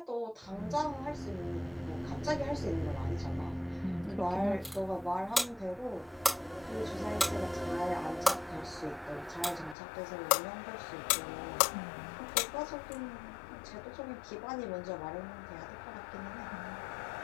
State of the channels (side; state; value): right; drops out; at 9.8 s